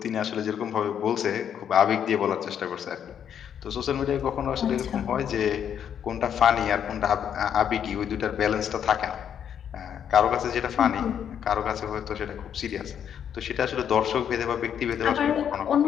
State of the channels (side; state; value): right; quieter; 8.8 dB